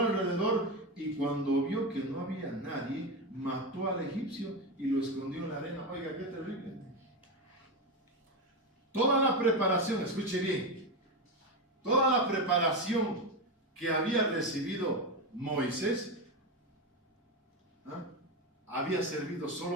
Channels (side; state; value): both; normal; correlation 0.14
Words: y cuando vio que no había nadie, mató al egipcio y lo escondió en la arena. Oiga, qué terrible. Toda la preparación, escuche bien, toda la preparación que había recibido Moisés, había servido